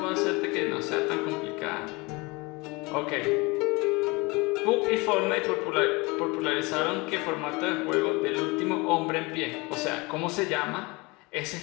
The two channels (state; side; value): quieter; right; 25.6 dB